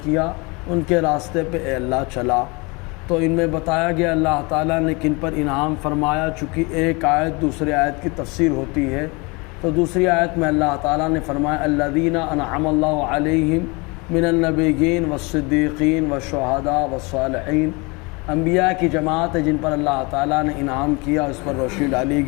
کیا ان کے راستے پہ اے اللہ چلا۔ تو ان میں بتایا گیا اللہ تعالیٰ نے کن پر انعام فرمایا، چونکہ ایک آیت دوسری آیت کی تفسیر ہوتی ہے، تو دوسری آیت میں اللہ تعالیٰ نے فرمایا الذین انعم اللہ علیہم من النبیین والصدیقین والشہداء والصالحین، انبیاء کی جماعت ہے جن پر اللہ تعالیٰ نے انعام کیا، اس پر روشنی ڈالی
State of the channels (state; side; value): quieter; right; 27.7 dB